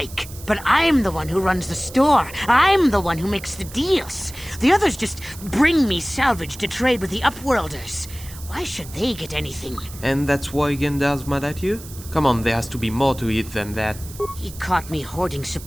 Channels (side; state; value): right; noise; hiss, 16 dB below the sound